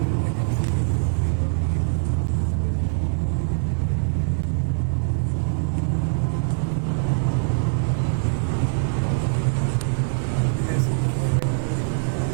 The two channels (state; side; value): silent; left; digital silence